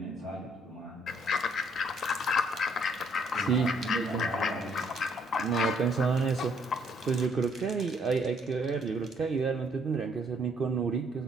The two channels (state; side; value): normal; both; correlation 0.66